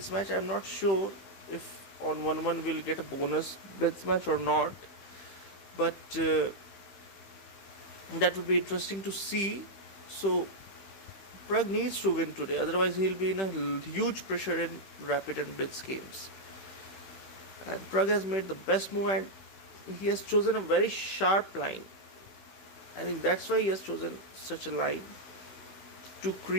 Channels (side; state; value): right; late; 15 ms